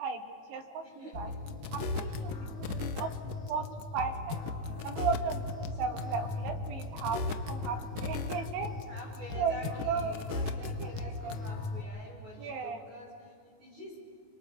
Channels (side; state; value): left; late; 19 ms